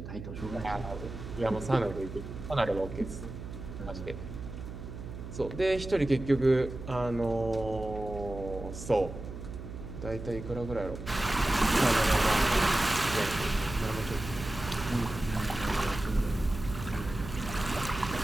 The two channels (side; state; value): right; noise; hum, 10 dB below the sound